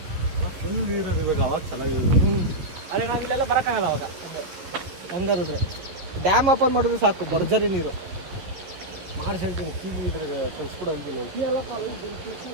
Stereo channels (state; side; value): late; left; 11 ms